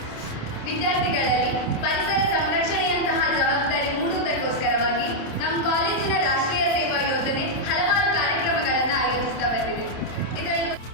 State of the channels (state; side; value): late; right; 27 ms